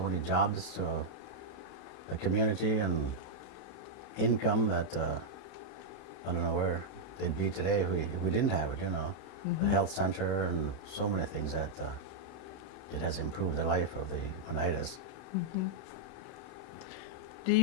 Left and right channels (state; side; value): late; right; 32 ms